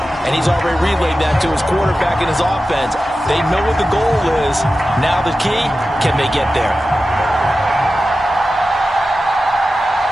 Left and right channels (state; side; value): normal; both; correlation 0.93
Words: And he's already relayed that to his quarterback and his offense. They know what the goal is. Now the key, can they get there?